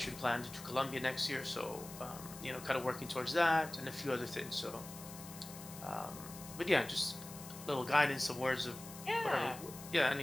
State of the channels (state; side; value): noise; left; hiss, 14 dB below the sound